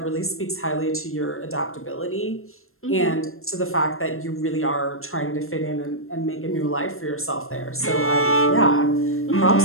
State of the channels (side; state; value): right; late; 0.62 ms